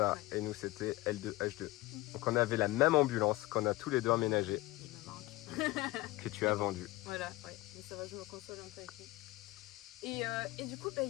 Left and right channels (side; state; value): right; quieter; 19.7 dB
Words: Ouais. et nous c'était L2 H2. Donc on avait la même ambulance qu'on a tous les deux emménagé, Il me manque. que tu as vendue. Voilà, ouais. Mais ça va, je me console un peu avec lui. Et du coup, il